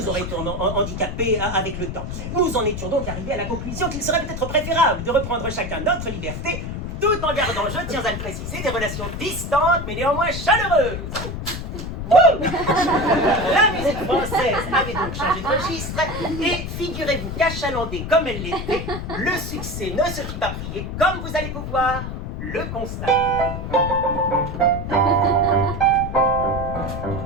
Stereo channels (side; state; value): left; noise; rumble, 6 dB below the sound